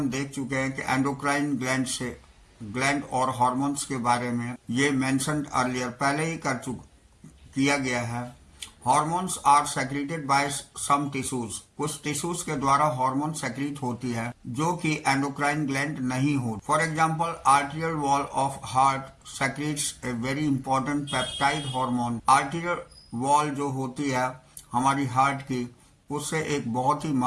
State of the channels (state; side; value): identical; both; correlation 1.00